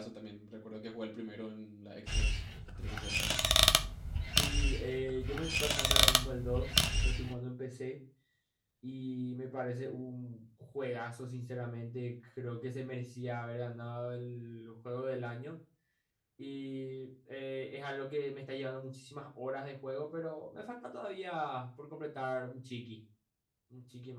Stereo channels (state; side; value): identical; both; correlation 1.00